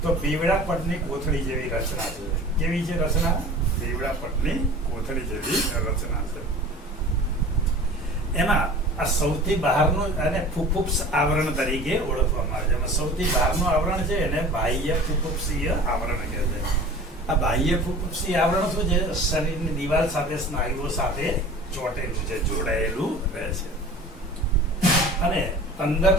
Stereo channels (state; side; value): normal; both; correlation 0.41